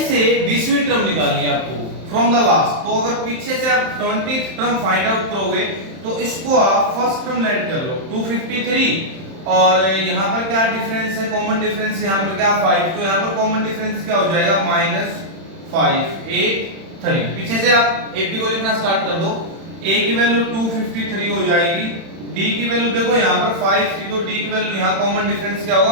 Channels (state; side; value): late; left; 31 ms